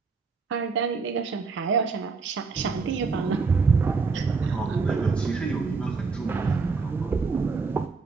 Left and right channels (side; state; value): left; quieter; 4.6 dB